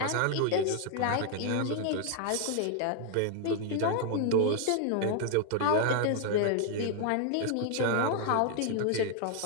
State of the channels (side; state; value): both; different; correlation 0.00